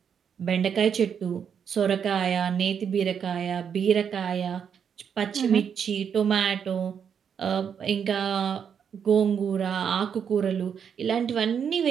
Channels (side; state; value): left; quieter; 7.5 dB